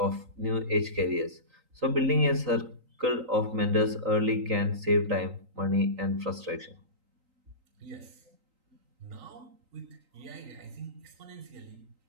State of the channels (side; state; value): left; late; 3.9 ms